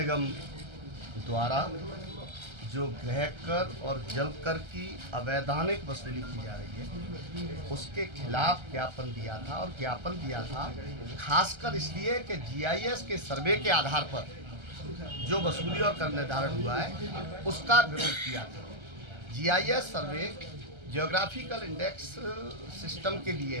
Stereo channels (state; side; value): late; left; 1.3 ms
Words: द्वारा जो गृह कर और जल कर की अवैधानिक वसूली की जा रही है उसके खिलाफ ज्ञापन दिया था। और ज्ञापन दिया था खासकर इसलिए कि जीआईएस के सर्वे के आधार पर जो वसूली और कर निर्धारण हुआ है उसका विरोध किया था। जीआईएस सर्वे जियोग्राफिकल इंडेक्स सिस्टम के लिए